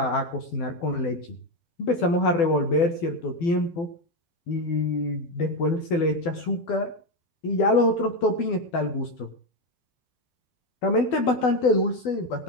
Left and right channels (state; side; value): late; right; 12 ms